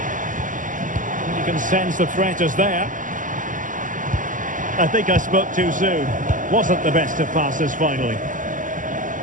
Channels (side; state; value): left; late; 0.38 ms